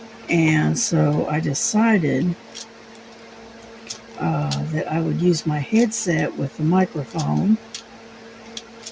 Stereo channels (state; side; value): identical; both; correlation 1.00